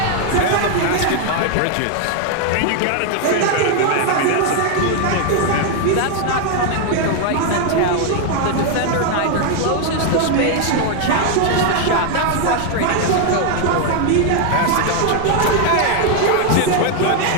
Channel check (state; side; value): different; both; correlation 0.00